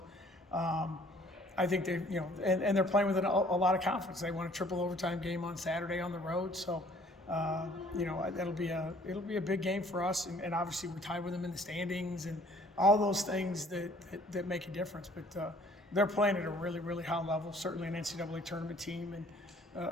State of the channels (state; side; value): normal; both; correlation 0.57